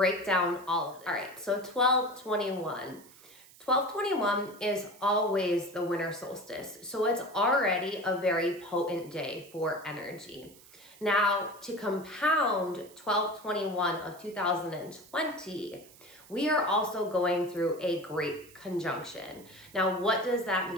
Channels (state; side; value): noise; right; hiss, 23 dB below the sound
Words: down all of this. All right, so 12/21. 12/21 is always the winter solstice, so it's already a very potent day for energy. Now, to compound 12/21 of 2020, we are also going through a great conjunction. Now, what does that